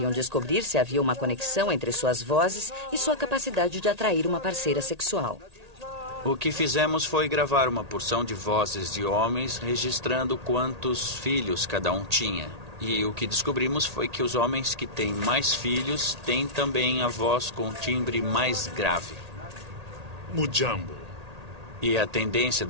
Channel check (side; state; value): left; late; 1.8 ms